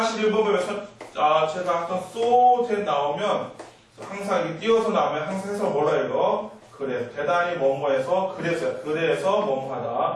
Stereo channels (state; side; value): identical; both; correlation 1.00